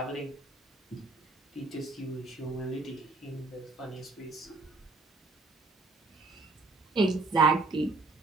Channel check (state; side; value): quieter; left; 3.6 dB